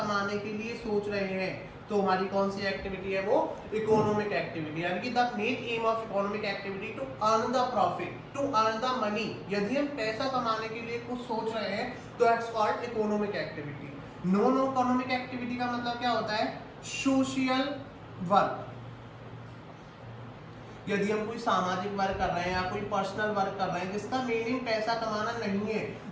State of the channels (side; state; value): both; identical; correlation 1.00